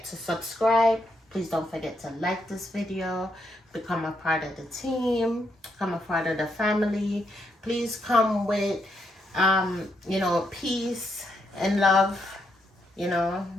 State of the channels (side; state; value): both; normal; correlation 0.78